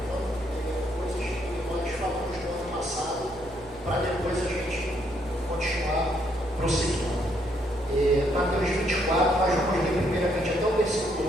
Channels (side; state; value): right; noise; hum, 22 dB below the sound